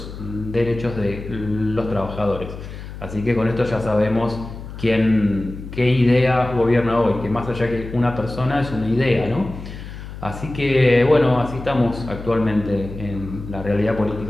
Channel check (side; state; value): left; noise; hum, 11 dB below the sound